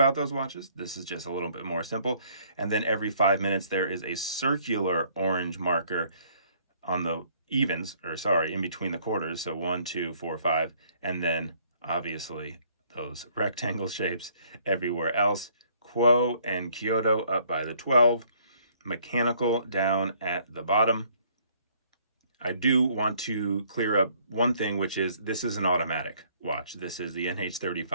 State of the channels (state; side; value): inverted; both; correlation -0.62